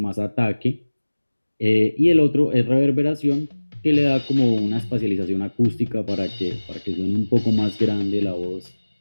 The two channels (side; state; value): both; inverted; correlation -1.00